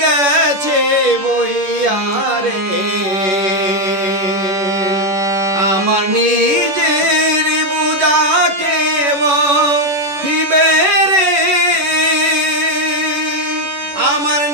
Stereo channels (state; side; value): late; left; 11 ms